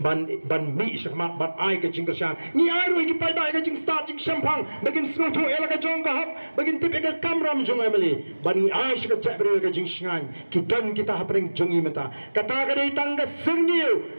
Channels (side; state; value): both; inverted; correlation -1.00